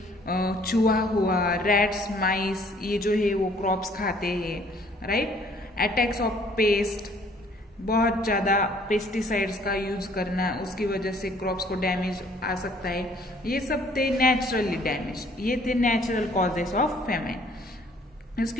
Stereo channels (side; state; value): both; normal; correlation 0.59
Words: चूहा हुआ, रैट्स, माइस, ये जो है वो क्रॉप्स खाते हैं, राइट। अटैक्स ऑफ पेस्ट, बहुत ज्यादा पेस्टिसाइड्स का यूज करना, उसकी वजह से क्रॉप्स को डैमेज आ सकता है। ये सब थे नेचुरली डैमेज, ये थे नेचुरल कॉजेस ऑफ फेमाइन।